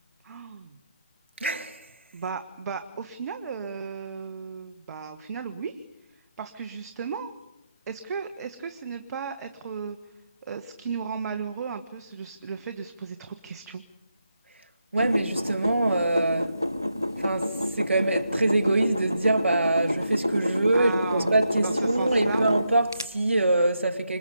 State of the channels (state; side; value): inverted; both; correlation -0.83